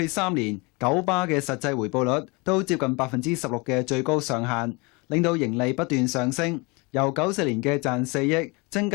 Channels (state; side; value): quieter; right; 27.9 dB